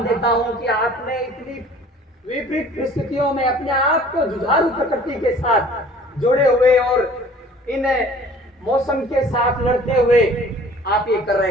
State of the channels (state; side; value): normal; both; correlation 0.50